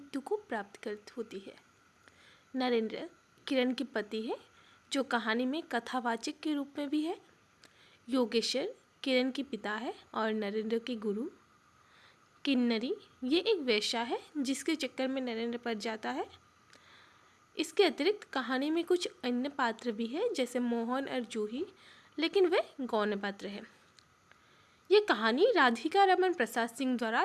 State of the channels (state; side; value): identical; both; correlation 1.00